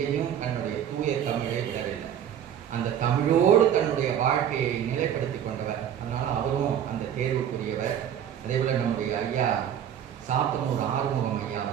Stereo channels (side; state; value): left; quieter; 9.6 dB